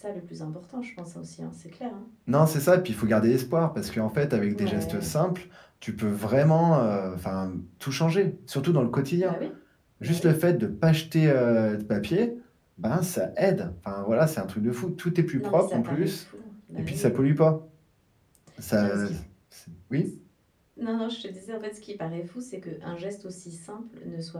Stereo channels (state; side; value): identical; both; correlation 1.00